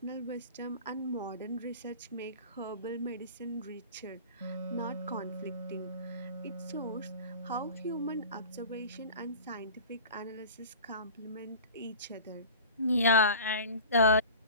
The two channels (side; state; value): both; inverted; correlation -0.38